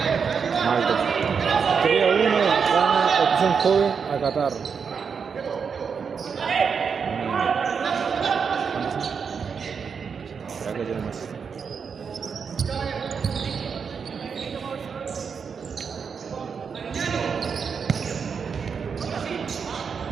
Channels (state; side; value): quieter; left; 6.2 dB